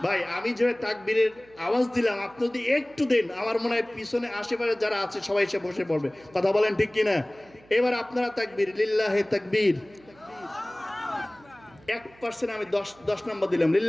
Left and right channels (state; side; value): noise; right; hum, 27 dB below the sound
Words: ভাই আমি যে তাকবীরের আওয়াজ দিলাম, আপনি যদি একটু দেন আমার মনে হয় পিছনে আশেপাশে যারা আছে সবাই এসে বসে পড়বে। কথা বলেন ঠিক কিনা? এবার আপনারা তাকবীর, লিল্লাহে তাকবীর। 1% আমি 10 নম্বর দিলাম,